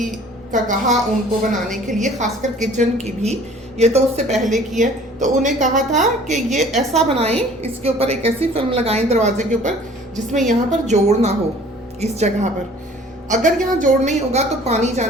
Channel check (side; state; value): both; normal; correlation 0.51